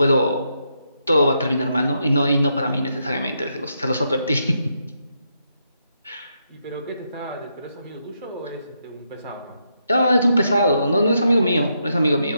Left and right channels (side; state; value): both; inverted; correlation -0.80